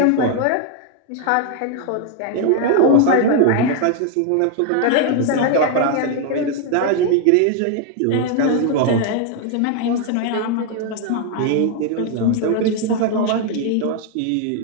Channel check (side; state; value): both; different; correlation 0.00